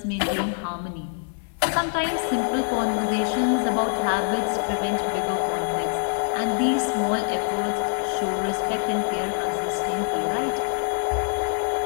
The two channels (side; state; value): right; silent; digital silence